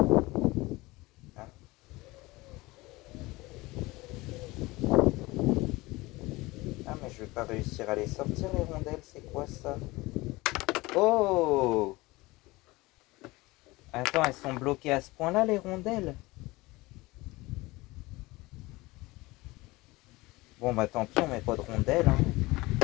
Hein? Ah, mais je vais pas réussir à les sortir, les rondelles, c'est quoi ça? Oh! Attends, elles sont bloquées à ce point-là, les rondelles? Bon, bah tant pis, on met pas de rondelles. Hein.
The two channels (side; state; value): right; quieter; 21.4 dB